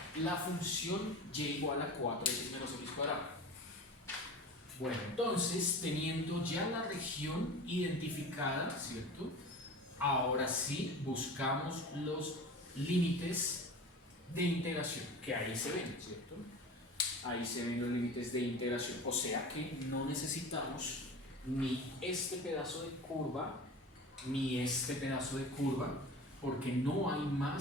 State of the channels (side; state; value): both; normal; correlation 0.35